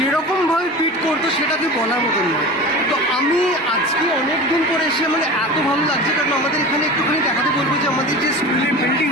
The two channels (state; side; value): normal; both; correlation 0.33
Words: পিট করতো সেটাকে বলার মতন নয়। তো আমি আজকে অনেক দিন পরে এসে মানে এত ভালো লাগছে, কারণ আমাদের এখানে একটুখানি দেখাতে বলবো যে আমাদের যে স্কুলের